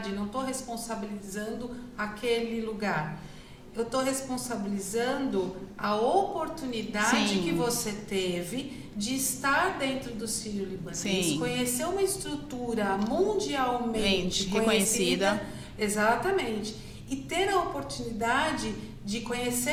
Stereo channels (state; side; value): identical; both; correlation 1.00